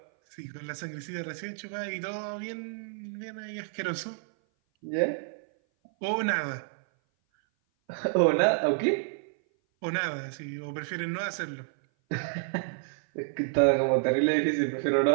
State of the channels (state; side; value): silent; left; 56 dB below the other